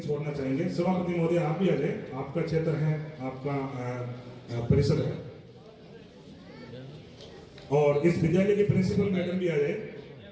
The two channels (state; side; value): identical; both; correlation 1.00